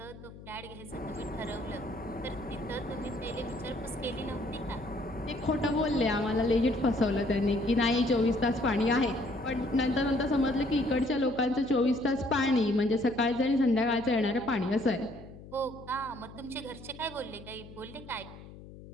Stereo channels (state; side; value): noise; left; hum, 17 dB below the sound